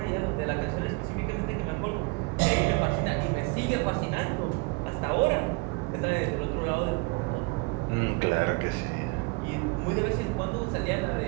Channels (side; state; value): left; quieter; 27.8 dB